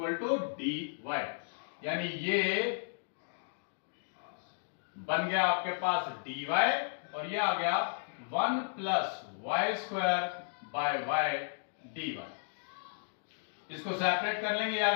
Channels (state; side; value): silent; right; digital silence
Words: to dy, यानी ये बन गया आपके पास dy और ये आ गया 1 plus y square by y dy। इसको सेपरेट कर लेंगे, आ